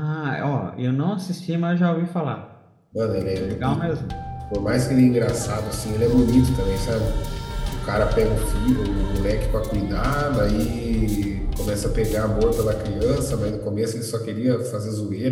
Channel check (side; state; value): both; identical; correlation 1.00